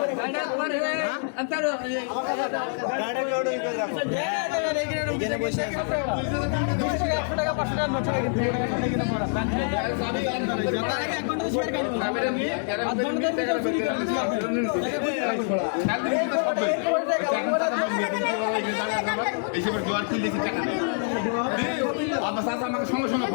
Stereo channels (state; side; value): silent; right; 61 dB below the other